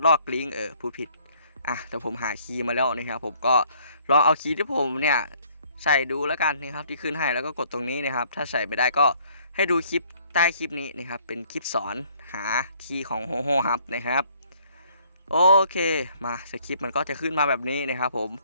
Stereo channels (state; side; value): inverted; both; correlation -0.62